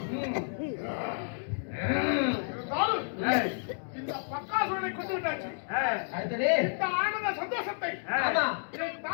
இந்த பக்காசுரனை கொண்டு விட்டாச்சு அடுத்தது இந்த ஆனந்த சந்தோஷத்தை ஆமா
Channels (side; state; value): right; silent; digital silence